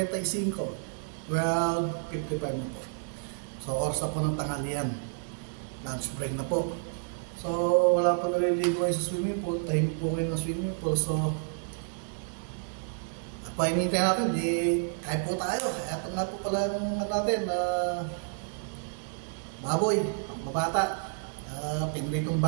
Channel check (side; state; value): left; silent; 58 dB below the other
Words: 12:55 na po. So, oras na po ng tanghalian. Lunch break na po. So, wala pa naliligo kayo sa swimming pool. Tahimik po kayo ng swimming pool. So, painitin natin, di kahit po tayo. Ito na po pala yung natin na baboy, ang babata. Pinritong